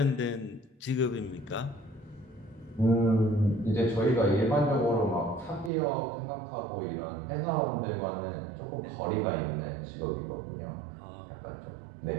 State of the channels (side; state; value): left; drops out; at 5.7 s